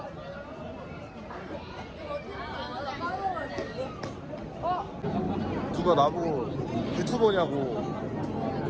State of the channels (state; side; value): identical; both; correlation 1.00